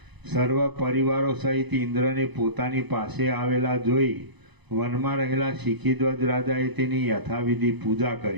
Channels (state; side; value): late; left; 1.0 ms